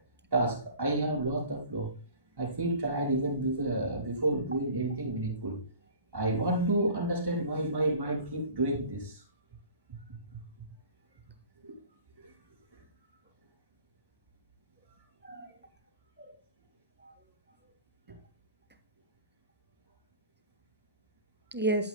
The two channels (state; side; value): inverted; both; correlation -0.45